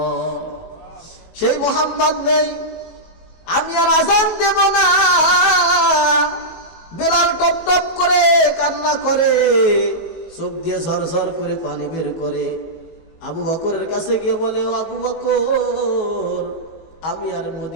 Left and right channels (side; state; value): right; late; 19 ms